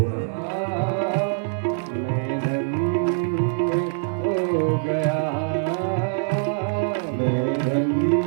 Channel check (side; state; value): left; silent; digital silence